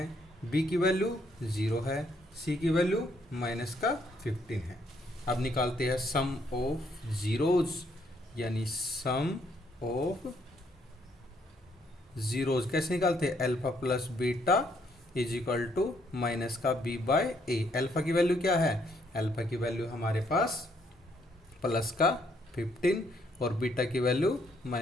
बी की वैल्यू 0 है, सी की वैल्यू माइनस का 15 है। अब निकालते हैं सम ऑफ जीरोज, यानी सम ऑफ जीरोज कैसे निकालते हैं, alpha plus beta is equal to minus का बी बाय ए। अल्फा की वैल्यू क्या है, अल्फा की वैल्यू हमारे पास प्लस का 15 और बीटा की वैल्यू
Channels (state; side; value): normal; both; correlation 0.70